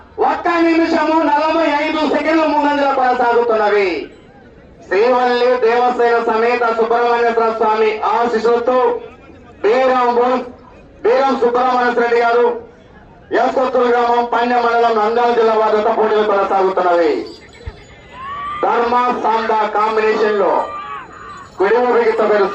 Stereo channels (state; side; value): identical; both; correlation 1.00